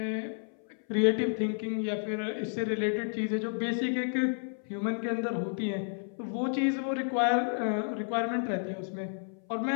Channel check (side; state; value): right; silent; 57 dB below the other